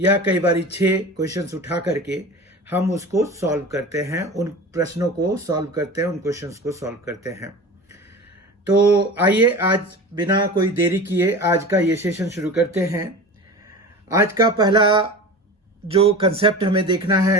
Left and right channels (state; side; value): normal; both; correlation 0.33